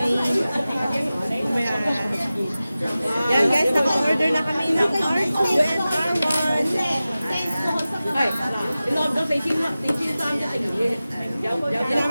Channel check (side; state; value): both; inverted; correlation -0.96